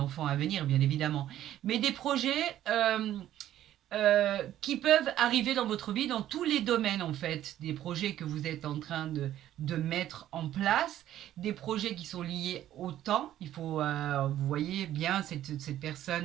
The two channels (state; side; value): quieter; left; 12.4 dB